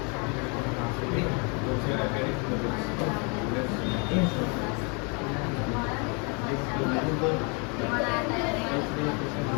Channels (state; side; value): quieter; right; 34.0 dB